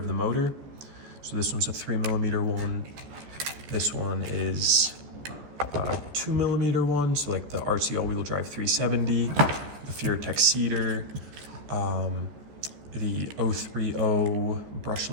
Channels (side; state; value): left; late; 14 ms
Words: the motor. So this one's a 3mm one. This one is a 2mm one, so like the RC all-wheel drive 370, the Furitek Cedar, the 030